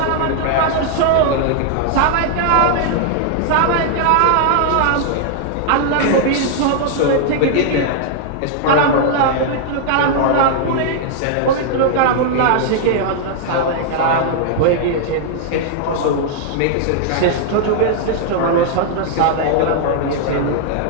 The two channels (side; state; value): both; different; correlation -0.01